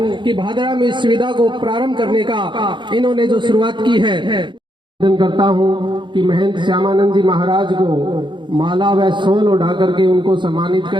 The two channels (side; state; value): left; late; 0.23 ms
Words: कि भादरा में इस सुविधा को प्रारंभ करने का इन्होंने जो शुरुआत की है। निवेदन करता हूं कि महंत श्यामानंद जी महाराज को माला व शॉल उड़ा करके उनको सम्मानित